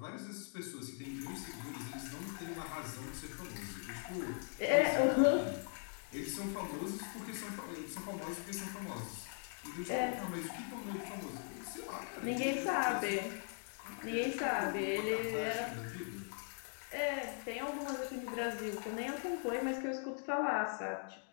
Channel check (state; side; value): silent; right; 51 dB below the other